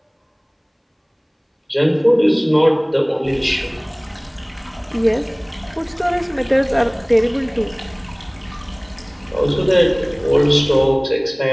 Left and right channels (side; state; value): both; identical; correlation 1.00